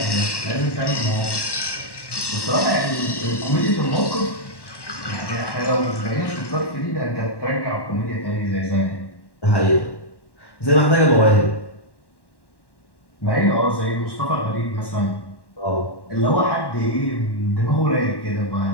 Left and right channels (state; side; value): late; right; 1.1 ms